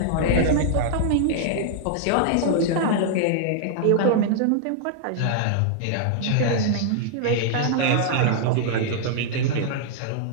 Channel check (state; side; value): different; both; correlation -0.01